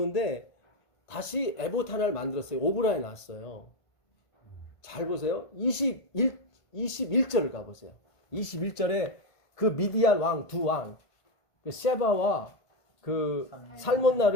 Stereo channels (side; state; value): right; late; 1.5 ms